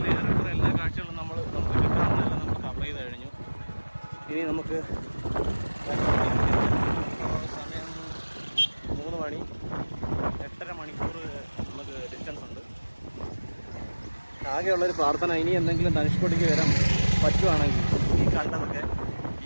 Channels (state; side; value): inverted; both; correlation -1.00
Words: എല്ലാ കാഴ്ചകളും നമുക്ക് കിട്ടാവുന്നതെല്ലാം നമ്മൾ കവർ ചെയ്ത് കഴിഞ്ഞു. ഇനി നമുക്ക് സമയം 3 മണി, 8.5 മണിക്കൂർ നമുക്ക് ഡിസ്റ്റൻസ് ഉണ്ട്. ആകെയുള്ളൊരു പ്രാർത്ഥന, ഇനി എന്തെങ്കിലും ധനുഷ്കോടിക്ക് വരാൻ പറ്റുവാണെങ്കിൽ ഈ കണ്ടതൊക്കെ